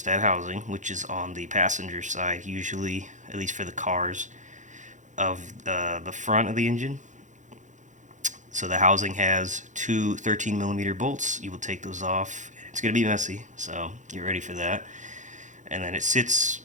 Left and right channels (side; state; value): left; late; 0.36 ms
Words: housing, which is on the passenger side, usually, at least for the cars, of the front of the engine. So the housing has two 13 millimeter bolts. You will take those off. It's going to be messy, so get ready for that. And then it sits